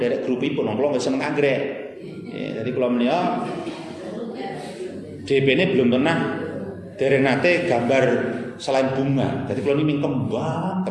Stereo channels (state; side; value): identical; both; correlation 1.00